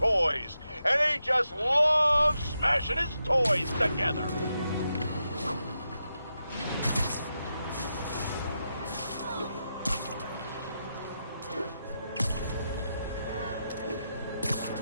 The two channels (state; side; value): inverted; both; correlation -0.86